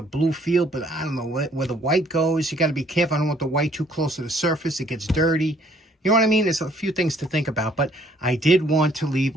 a blue feel, but I don't know where the white goes. You got to be careful. I don't want the white too close to the surface. It gets dirty. You know what I mean? There's a few things to think about, but I did want to leave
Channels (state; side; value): normal; both; correlation 0.62